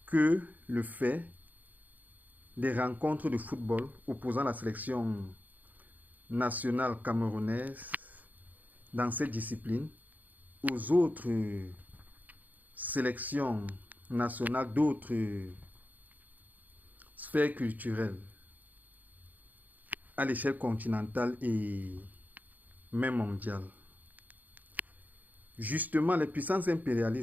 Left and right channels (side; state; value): left; late; 0.081 ms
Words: que le fait des rencontres de football opposant la sélection nationale camerounaise dans cette discipline aux autres sélections nationales d'autres sphères culturelles à l'échelle continentale et même mondiale. Justement, les puissances